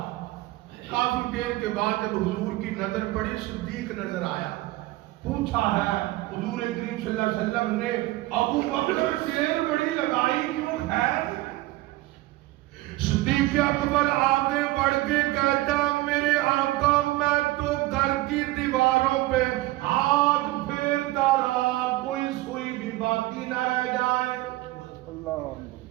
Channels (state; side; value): quieter; left; 18.3 dB